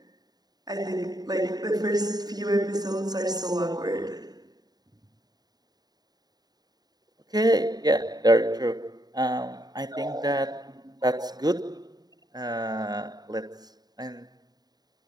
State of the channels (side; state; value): left; late; 0.19 ms